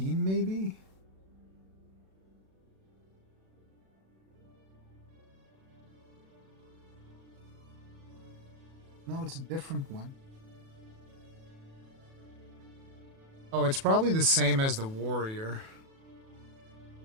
maybe? No, it's a different one. Oh, it's probably the same as the warrior.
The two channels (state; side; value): late; left; 37 ms